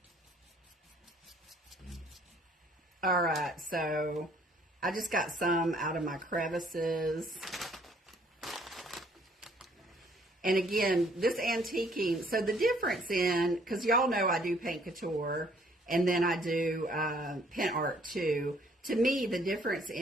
All right, so I just got some out of my crevices. And again, this antiquing, so the difference in, because y'all know I do paint couture, and then I do pen art too. To me, the difference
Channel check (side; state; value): both; normal; correlation 0.62